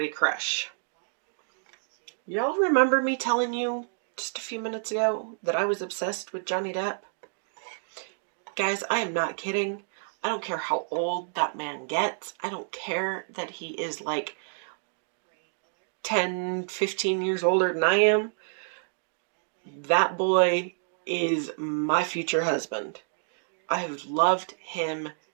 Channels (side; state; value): left; silent; digital silence